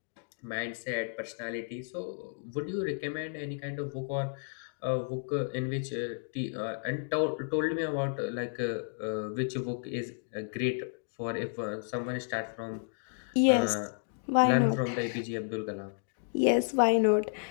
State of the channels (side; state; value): right; silent; digital silence